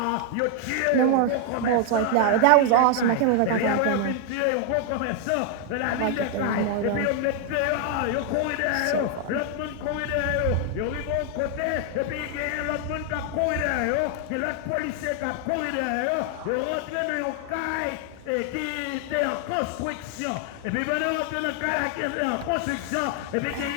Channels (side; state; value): both; different; correlation 0.00